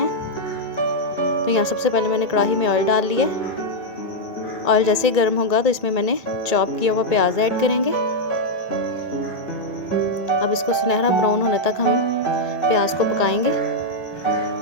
तो यहाँ सबसे पहले मैंने कढ़ाई में ऑयल डाल लिया। ऑयल जैसे ही गर्म होगा तो इसमें मैंने चॉप किया हुआ प्याज ऐड करेंगे। अब इसको सुनहरा ब्राउन होने तक हम प्याज को पकाएंगे।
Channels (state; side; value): late; right; 1.8 ms